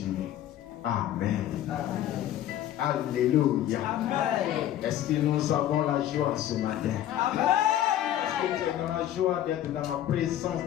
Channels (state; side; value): quieter; right; 12.0 dB